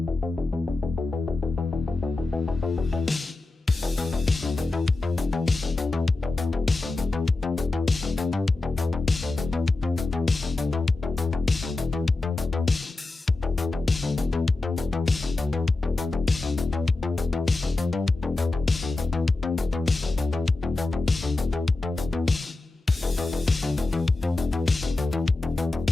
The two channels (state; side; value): quieter; right; 3.2 dB